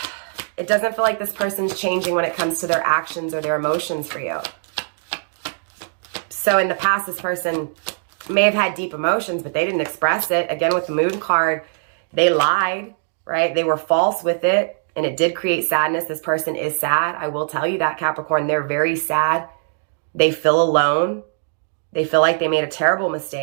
it doesn't feel like this person's changing when it comes to their actions or their emotions for you. So in the past, this person may have had deep emotions, but they didn't express it. Again, with the moon card, they lied, right? They were false with it, and it did create sadness. This person is sad. I will tell you that, Capricorn. They're very sad. They feel alone. They feel like they made a terrible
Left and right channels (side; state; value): left; silent; digital silence